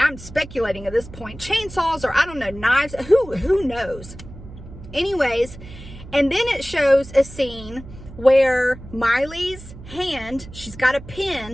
speculating at this point, chainsaws, or I don't know, knives, who knows? Anyways, and then it shows a scene where Miley's hand, she's got a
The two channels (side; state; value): right; noise; hum, 16 dB below the sound